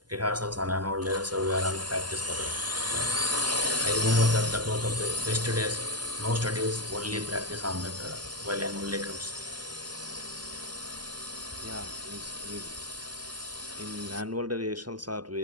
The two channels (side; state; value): left; late; 0.70 ms